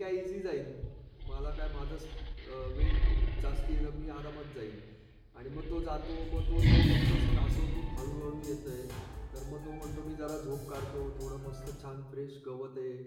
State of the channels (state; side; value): identical; both; correlation 1.00